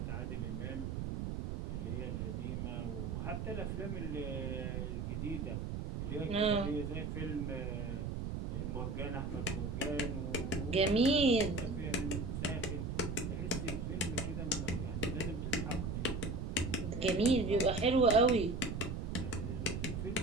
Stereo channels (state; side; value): noise; right; rumble, 3 dB below the sound